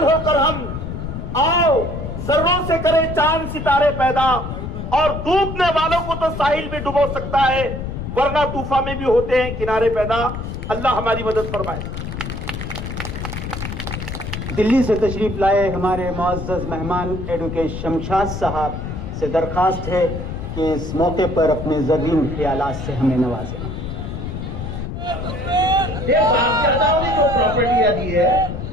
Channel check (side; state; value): left; noise; rumble, 6 dB below the sound